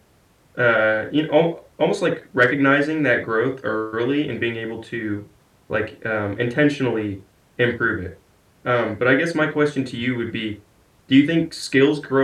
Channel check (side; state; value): both; identical; correlation 1.00